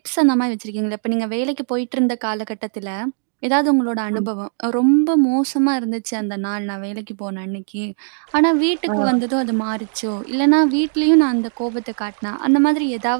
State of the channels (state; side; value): silent; left; digital silence